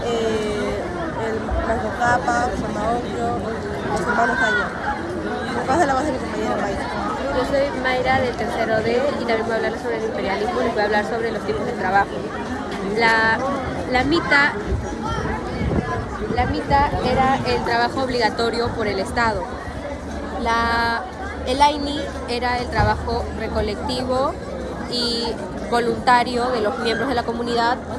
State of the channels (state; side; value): identical; both; correlation 1.00